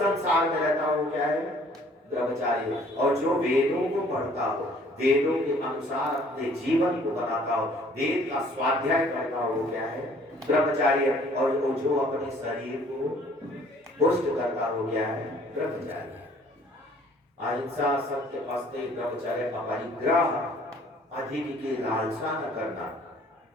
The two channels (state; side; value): normal; both; correlation 0.57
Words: में रहता हो, वो क्या है? ब्रह्मचारी। और जो वेदों को पढ़ता हो, वेदों के अनुसार अपने जीवन को बनाता हो, वेद का स्वाध्याय करता हो, वो क्या है? ब्रह्मचारी है। और जो अपने शरीर को पुष्ट करता हो, क्या है? ब्रह्मचारी। अहिंसा, सत्य, अस्तेय, ब्रह्मचर्य, अपरिग्रह, अधिक की लालसा न करना।